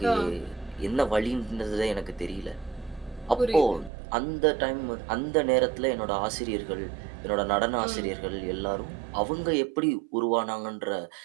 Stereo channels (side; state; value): left; drops out; at 3.9 s